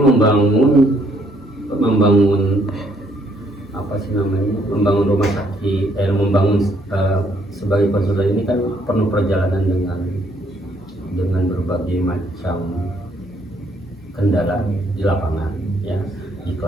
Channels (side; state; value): both; normal; correlation 0.68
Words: membangun rumah sakit, sebagai konsultan ini kan penuh perjalanan dengan berbagai macam kendala di lapangan, ya, di